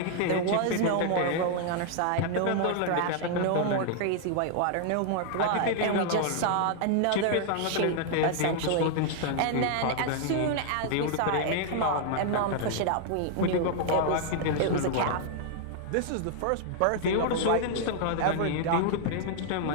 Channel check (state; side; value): different; both; correlation 0.00